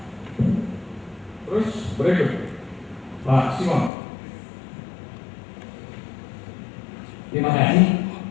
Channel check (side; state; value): right; drops out; at 3.9 s